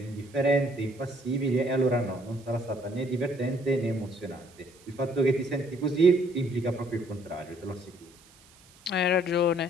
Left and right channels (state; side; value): noise; right; hiss, 26 dB below the sound